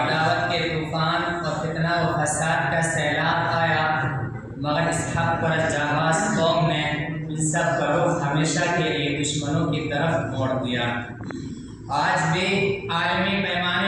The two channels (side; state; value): both; identical; correlation 1.00